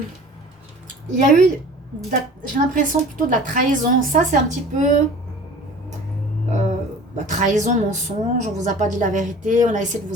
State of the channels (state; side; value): normal; both; correlation 0.44